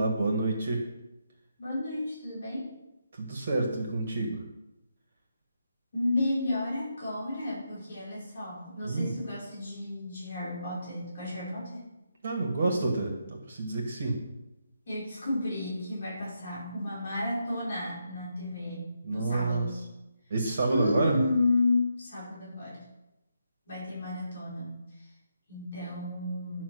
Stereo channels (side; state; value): both; inverted; correlation -0.81